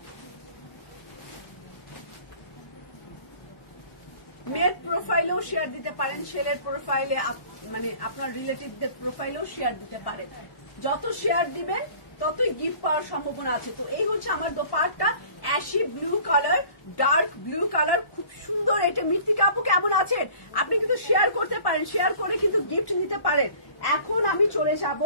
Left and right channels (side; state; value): right; late; 1.1 ms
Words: মেয়ের প্রোফাইলেও শেয়ার দিতে পারেন, ছেলের প্রোফাইলে, মানে আপনার রিলেটিভদের প্রোফাইলেও শেয়ার দিতে পারেন। যত শেয়ার দিবেন ততই গিফট পাওয়ার সম্ভাবনা আছে। তো এই হচ্ছে আমার dupatta, ashy blue colour, dark blue colour, খুব সুন্দর। এটা মৃত্তিকা আপু কেমন আছেন? আপনি কিন্তু শেয়ার করতে পারেন, শেয়ার করে কিন্তু গিফট নিতে পারেন। এখন আমি চলে যাব,